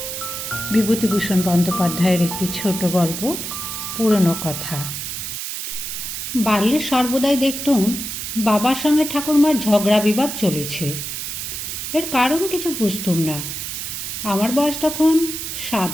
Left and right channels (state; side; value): noise; right; hiss, 5 dB below the sound